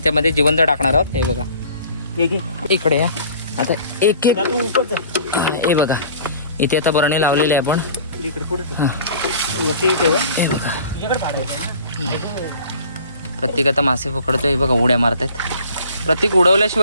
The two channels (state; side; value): inverted; both; correlation -0.48